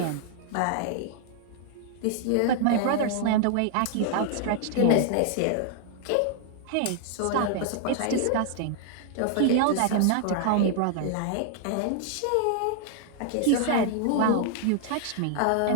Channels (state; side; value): different; both; correlation -0.01